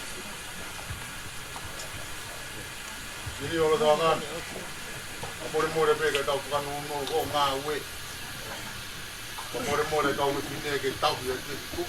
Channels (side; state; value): both; identical; correlation 1.00